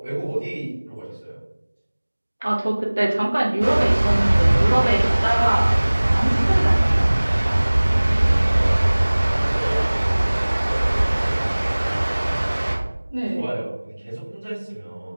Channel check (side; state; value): both; inverted; correlation -1.00